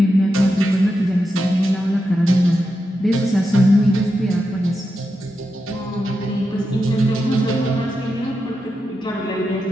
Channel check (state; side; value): normal; both; correlation 0.87